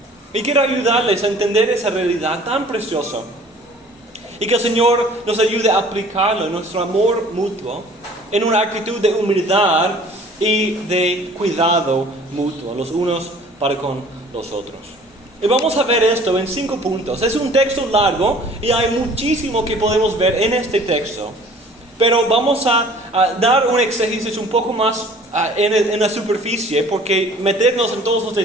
Y quiero ayudarles a entender esa realidad tan preciosa y que el Señor nos ayude a aplicarlo en nuestro amor mutuo, en una actitud de humildad y de cuidado mutuo, los unos para con los otros. Y vamos a ver esto en 5 puntos. Es un texto largo y hay muchísimo que podemos ver en este texto. Pero vamos a dar un exégesis un poco más en la superficie, porque meternos en todos los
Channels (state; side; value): normal; both; correlation 0.50